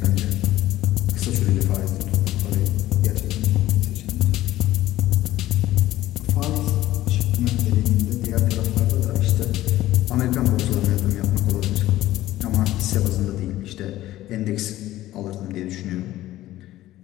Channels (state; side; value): quieter; right; 15.1 dB